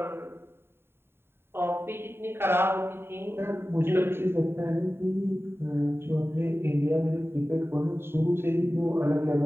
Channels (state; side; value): late; left; 0.11 ms